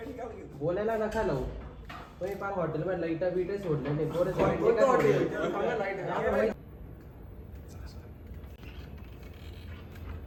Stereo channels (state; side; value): identical; both; correlation 1.00